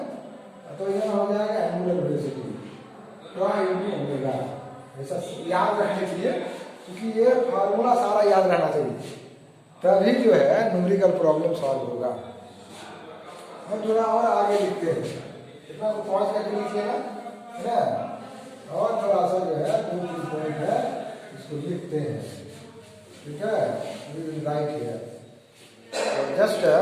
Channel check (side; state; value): both; identical; correlation 1.00